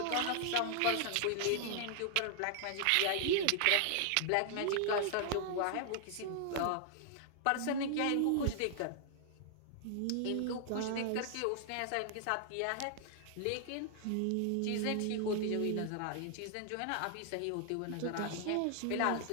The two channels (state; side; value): different; both; correlation 0.00